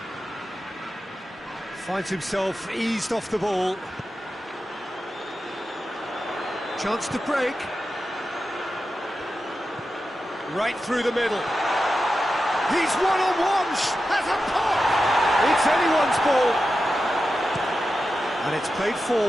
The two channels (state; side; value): normal; both; correlation 0.91